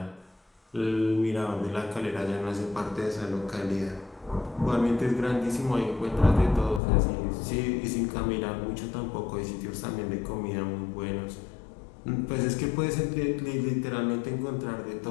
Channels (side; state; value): right; drops out; at 6.8 s